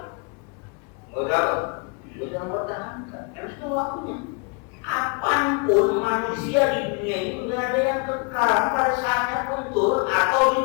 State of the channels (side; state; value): right; quieter; 34.0 dB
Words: Udah mempertahankan. Harus tahu waktunya. Apapun manusia di dunia itu tidak ada yang kekal, pada saatnya pun turun atau